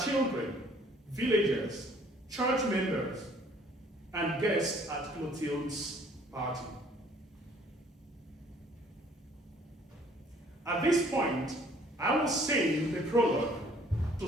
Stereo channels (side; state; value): both; normal; correlation 0.58